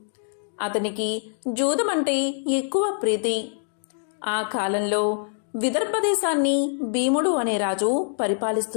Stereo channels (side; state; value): right; silent; 62 dB below the other